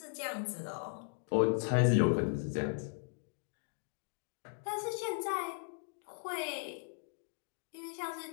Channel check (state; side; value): silent; right; digital silence